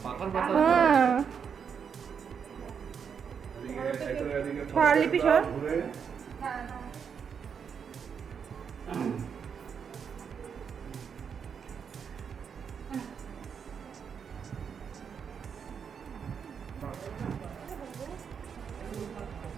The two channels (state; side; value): quieter; left; 6.9 dB